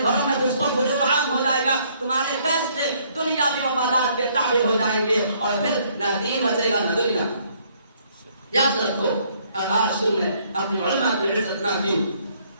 گھروں میں فسق و فجور عام ہو جائے گا, تمہارے فیصلے دنیاوی مفادات کے تابع ہو جائیں گے اور پھر نہ دین بچے گا نہ دنیا. یاد رکھو, آج تم نے اپنی علماء کی عزت نہ کی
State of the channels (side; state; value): both; inverted; correlation -0.66